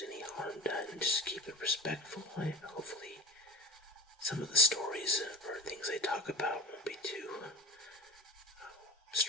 any harm done. Just keep it respectful. Hopefully some of the stories or things I talk about won't be too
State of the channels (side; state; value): both; normal; correlation 0.34